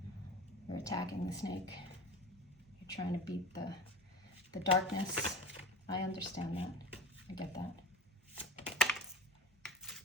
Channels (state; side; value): normal; both; correlation 0.35